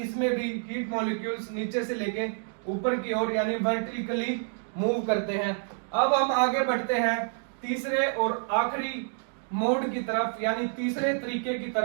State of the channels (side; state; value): left; silent; 59 dB below the other